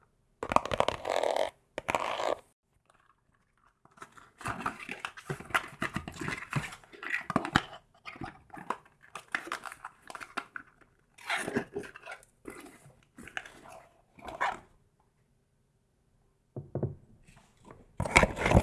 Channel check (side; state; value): both; identical; correlation 1.00